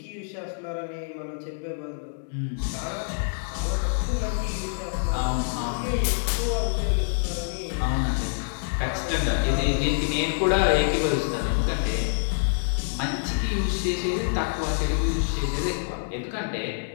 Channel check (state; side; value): silent; right; digital silence